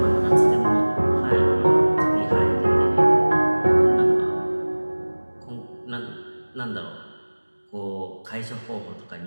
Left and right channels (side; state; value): both; inverted; correlation -1.00